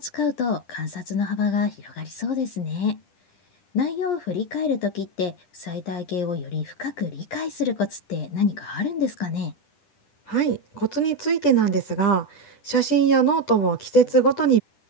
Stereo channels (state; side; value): late; right; 10 ms